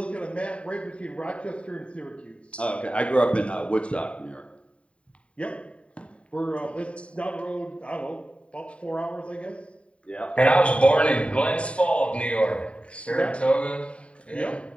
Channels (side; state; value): right; late; 0.061 ms